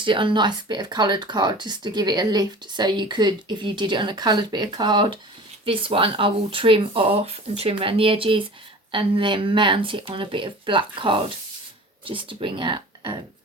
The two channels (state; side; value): normal; both; correlation 0.40